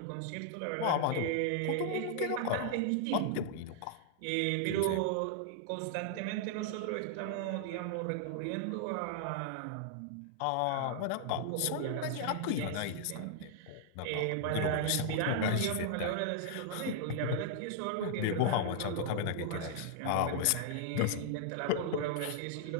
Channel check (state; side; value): different; both; correlation -0.01